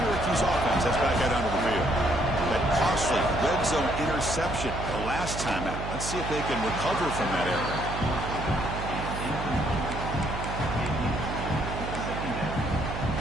offense heads back out onto the field. That costly red zone interception the last time out. Let's see if they can recover from that error.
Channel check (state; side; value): noise; right; hum, 6 dB below the sound